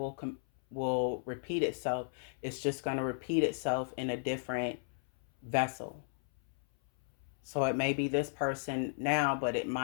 repeat itself. It's just going to repeat itself in a different vessel. So it may be this person now, but it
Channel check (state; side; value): silent; right; 55 dB below the other